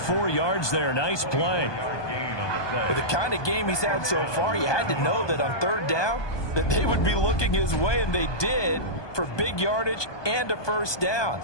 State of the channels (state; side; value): late; right; 1.2 ms